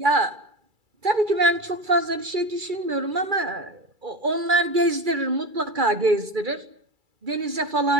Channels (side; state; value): left; late; 2.3 ms